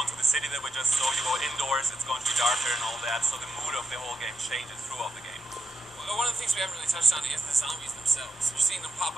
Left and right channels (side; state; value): left; noise; rumble, 30 dB below the sound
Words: the city that we just saw, you go indoors, it's going to be darker and all that, so the mood of the whole game changes throughout the game. Well, one of the things we haven't really touched on is the zombies themselves. You're seeing them pop